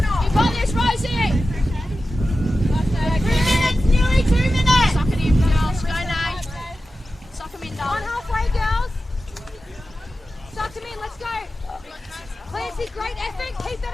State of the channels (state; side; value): normal; both; correlation 0.93